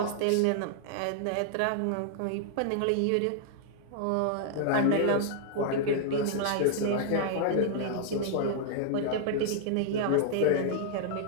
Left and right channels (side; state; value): both; different; correlation -0.01